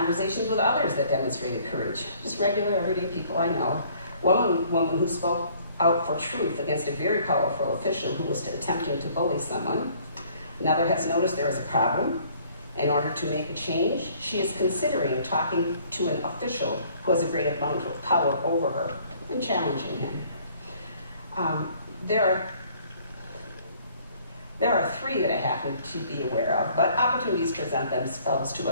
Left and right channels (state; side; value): inverted; both; correlation -0.59